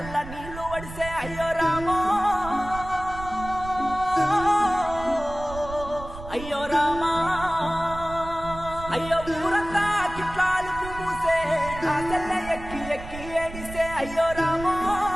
నీళ్లు వడిసే అయ్యో రామో అయ్యో రామా అయ్యో ఊరంతా కిట్లాలు పూసే రాసెల్ల ఎక్కి ఎక్కి ఏడిసే అయ్యో రామో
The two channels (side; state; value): right; noise; rumble, 12 dB below the sound